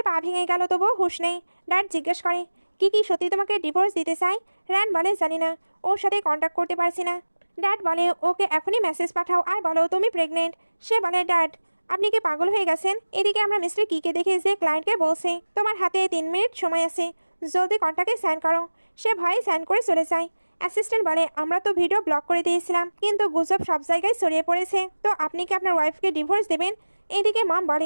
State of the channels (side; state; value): both; inverted; correlation -1.00